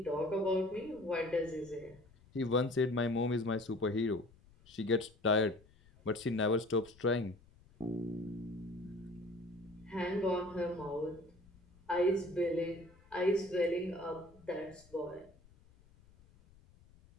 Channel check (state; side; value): noise; left; rumble, 26 dB below the sound